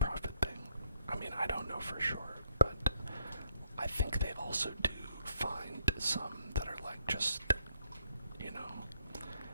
thing. I mean, I don't know for sure, but I think they also do find some that are like just, you know,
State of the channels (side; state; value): both; inverted; correlation -0.69